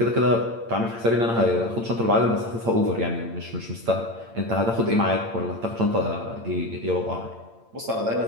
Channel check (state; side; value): late; left; 8.8 ms